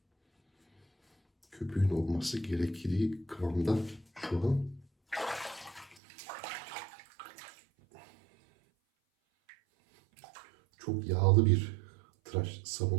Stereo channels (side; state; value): left; drops out; at 6.0 s